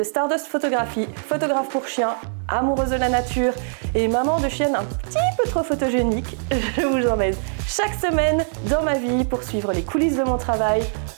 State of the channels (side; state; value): left; silent; digital silence